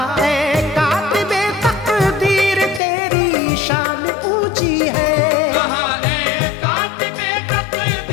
ऐ कातिबे तकदीर तेरी शान ऊंची है। कहा ऐ कातिबे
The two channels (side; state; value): right; drops out; at 2.8 s